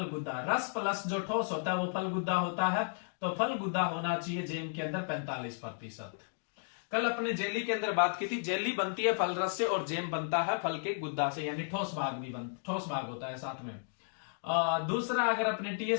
गुद्दा, रस प्लस जो ठोस होता है वो फल गुद्दा होता है। तो फल गुद्दा होना चाहिए जैम के अंदर 45%। कल अपने जेली के अंदर बात की थी, जेली बनती है फल रस से और जैम बनता है फल के गुद्दा से, यानी ठोस भाग भी ठोस भाग होता है साथ में। दूसरा, अगर अपने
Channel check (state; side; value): silent; right; digital silence